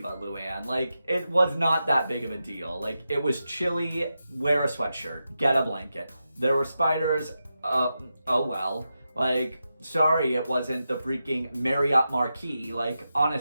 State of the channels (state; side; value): inverted; both; correlation -0.89